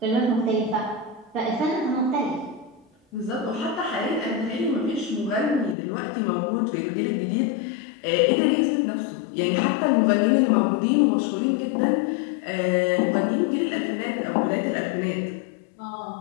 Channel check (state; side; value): drops out; right; at 5.8 s